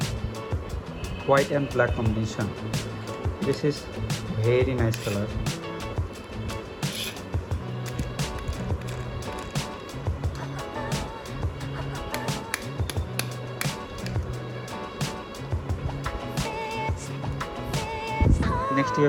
white and black combination. This is very nice color. Next we are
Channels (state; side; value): identical; both; correlation 1.00